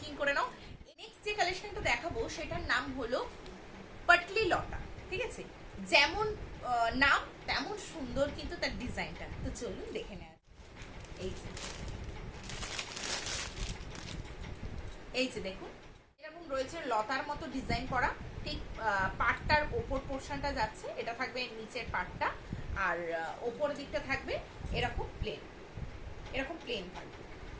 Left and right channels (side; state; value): both; identical; correlation 1.00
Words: করে নাও। নেক্সট যে কালেকশনটা দেখাবো সেটার নাম হলো পাটলি লতা, ঠিক আছে। যেমন নাম তেমন সুন্দর কিন্তু তার ডিজাইনটা। তো চলুন দেখে নেওয়া। এই যে দেখুন এরকম রয়েছে লতার মতো ডিজাইন করা, ঠিক পাটটার ওপর পোর্শনটা যাচ্ছে, এটা থাকবে নিচের পাটটা, আর ওপর দিকটা থাকবে এরকম প্লেন, এরকম প্লেন থাকবে,